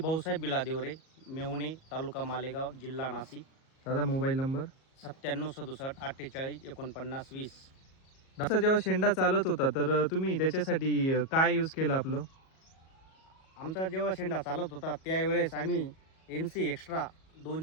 बिलादेवरे, मेवणे, तालुका मालेगाव, जिल्हा नाशिक. दादा, मोबाईल नंबर. 9767 48 49 20. दादा, जेव्हा शेंडा चालत होता तर तुम्ही त्याच्यासाठी काय यूज केलं आपलं? आमचा जेव्हा शेंडा चालत होता त्यावेळेस आम्ही MC एक्स्ट्रा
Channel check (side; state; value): right; late; 37 ms